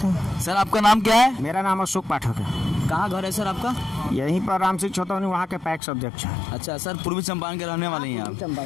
हैं। सर आपका नाम क्या है? मेरा नाम अशोक पाठक है। कहाँ घर है सर आपका? यहीं पर राम सिंह छोटौनी, वहाँ के पैक्स अध्यक्ष हैं। अच्छा सर, पूर्वी चंपारण के रहने वाले हैं आप?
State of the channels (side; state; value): right; drops out; at 5.8 s